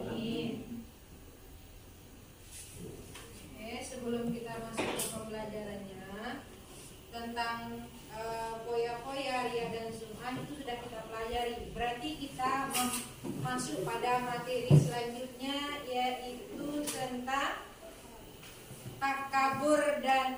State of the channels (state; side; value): identical; both; correlation 1.00